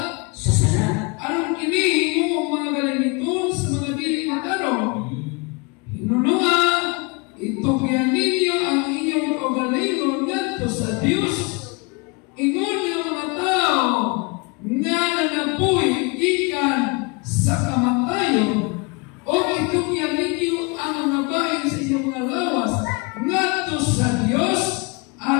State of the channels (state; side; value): quieter; right; 29.7 dB